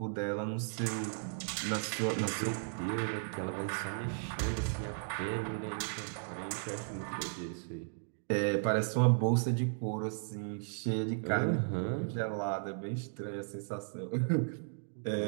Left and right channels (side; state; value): left; silent; digital silence